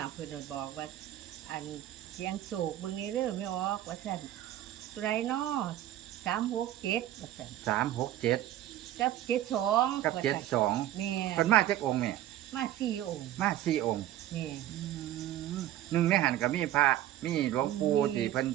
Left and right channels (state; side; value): quieter; left; 13.1 dB